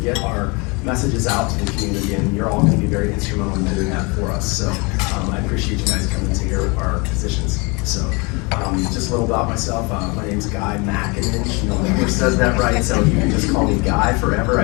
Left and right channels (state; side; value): quieter; right; 28.7 dB